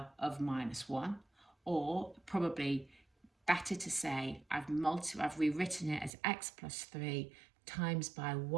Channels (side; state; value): left; drops out; at 6.1 s